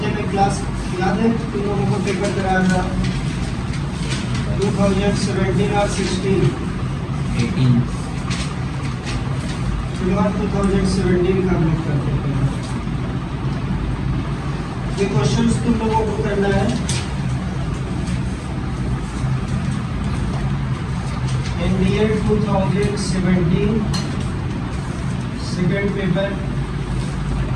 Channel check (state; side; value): identical; both; correlation 1.00